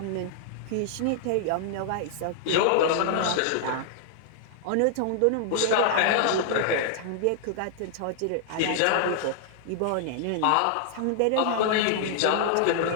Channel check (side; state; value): both; different; correlation -0.01